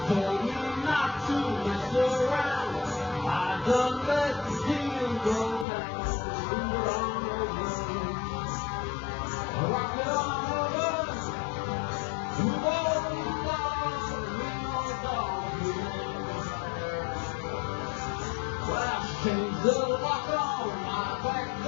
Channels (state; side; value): drops out; right; at 5.7 s